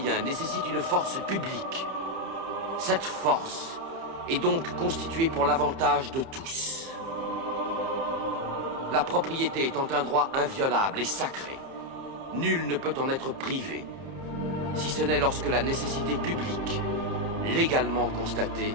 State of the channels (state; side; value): late; left; 30 ms